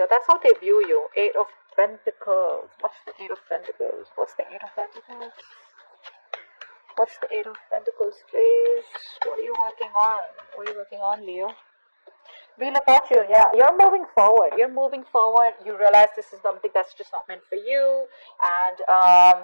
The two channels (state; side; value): inverted; both; correlation -1.00